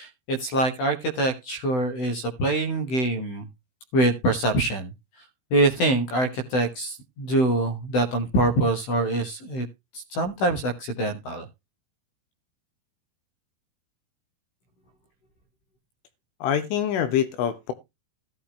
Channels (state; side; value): late; right; 16 ms